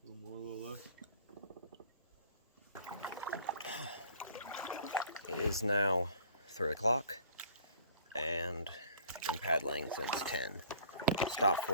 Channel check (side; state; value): both; inverted; correlation -0.52